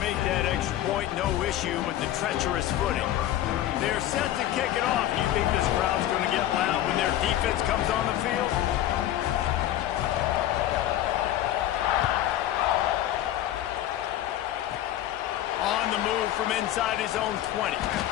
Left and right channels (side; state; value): right; quieter; 12.9 dB